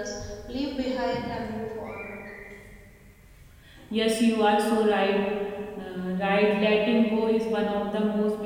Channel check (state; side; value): identical; both; correlation 1.00